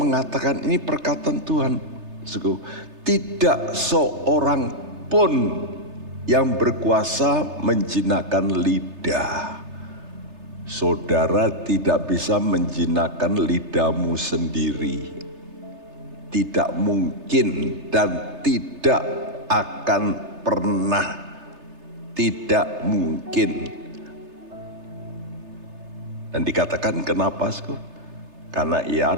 ini perkataan Tuhan. Tidak seorang pun yang berkuasa menjinakkan lidah. Saudara tidak bisa menjinakkan lidahmu sendiri. Tidak mungkin dan tidak akan pernah, tidak mungkin. Dan dikatakan kenapa? Karena ia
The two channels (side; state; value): left; late; 3.3 ms